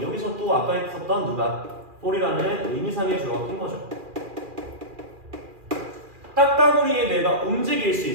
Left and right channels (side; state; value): left; late; 2.4 ms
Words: 여기서 또 아까 했었던 누가? for이라는 의미상의 주어가 낀 거죠. 딱따구리의 뇌가 움직일 수